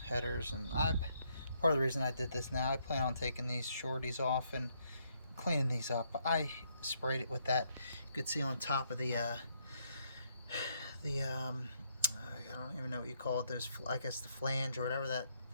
headers. And part of the reason I did this now, I plan on taking these shorties off and cleaning these up. I sprayed it with that. You could see on top of the I don't even know what you call it. There's, I guess, the flange or whatever that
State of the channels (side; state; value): both; inverted; correlation -0.73